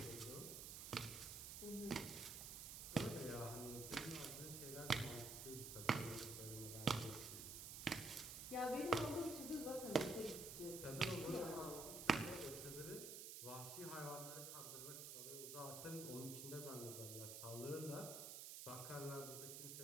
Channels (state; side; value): noise; right; hiss, 7 dB below the sound